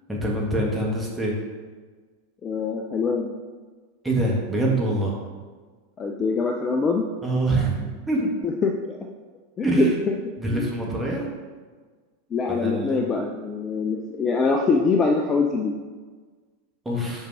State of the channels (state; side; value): normal; both; correlation 0.47